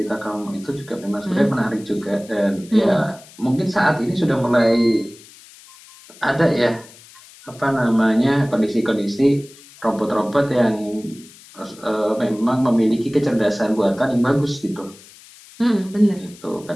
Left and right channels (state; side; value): noise; left; hiss, 22 dB below the sound